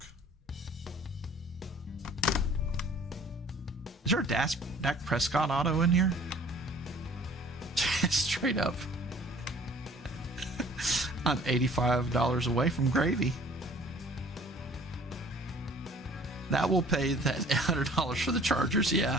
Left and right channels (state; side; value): normal; both; correlation 0.52